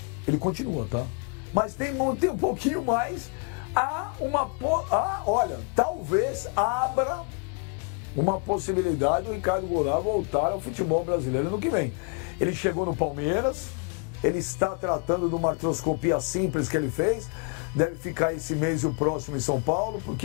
ele continua, tá? Mas tem um pouquinho mais. Olha, talvez abra uma possibilidade do Ricardo Goulart voltar ao futebol brasileiro no que vem. Ele chegou no Palmeiras, ele está tratando de uma artroscopia simples que ele fez, deve ficar esse mês e o próximo em São Paulo,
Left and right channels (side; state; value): right; quieter; 33.2 dB